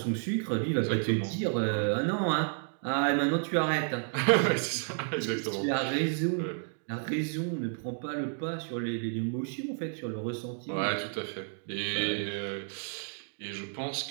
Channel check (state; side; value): silent; left; 57 dB below the other